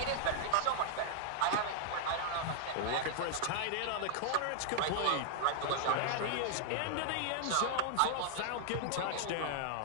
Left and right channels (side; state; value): both; different; correlation -0.01